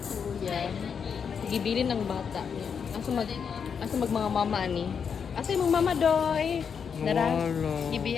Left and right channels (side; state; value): right; quieter; 6.7 dB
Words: Kuya. Gibilin ng bata niya. Asa mag mga mama ni. Asa yung mama doy? Dara.